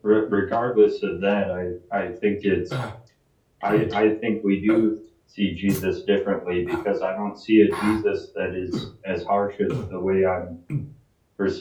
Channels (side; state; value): both; identical; correlation 1.00